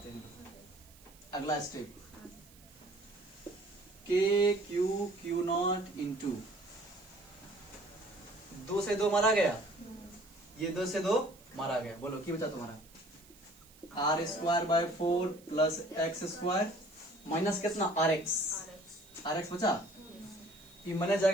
हैं अगला स्टेप, के क्यू नॉट इंटू 2 से 2 मारा गया, ये 2 से 2 मारा गया, बोलो की बचा तुम्हारा r square by 4 plus x square minus कितना आर एक्स बचा, ये मैंने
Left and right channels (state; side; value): noise; right; hiss, 25 dB below the sound